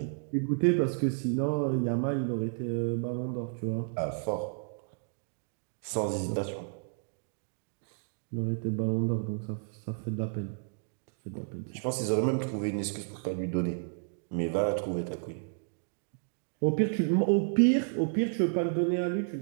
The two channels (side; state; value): left; silent; digital silence